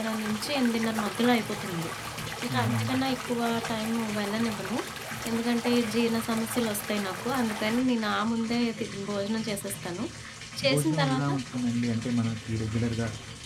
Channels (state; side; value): identical; both; correlation 1.00